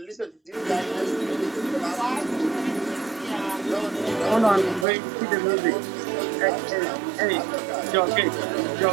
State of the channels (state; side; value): drops out; left; at 4.9 s